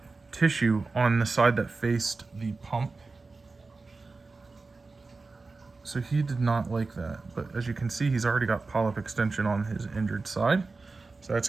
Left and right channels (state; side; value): quieter; left; 3.9 dB